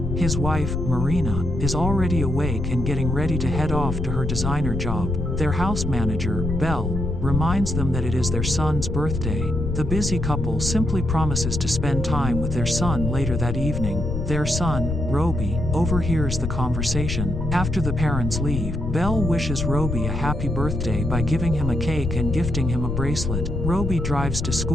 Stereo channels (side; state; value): left; noise; rumble, 2 dB below the sound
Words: His wife, Marina, is already awake and getting ready to head off to her designer job. Their house manager, Belle, reminds them that it is their son's birthday. The busy couple simply promises to spend time with their son later that evening. Their son, Roby, overhears the conversation. After the parents leave, Belle wishes Roby a happy birthday by giving him a cake and gifting him a bracelet. Roby drives to